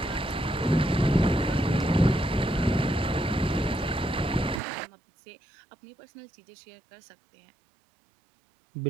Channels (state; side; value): drops out; left; at 4.6 s